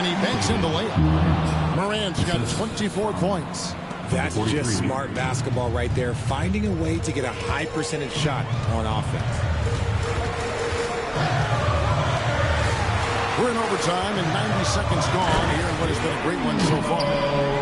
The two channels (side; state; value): both; identical; correlation 1.00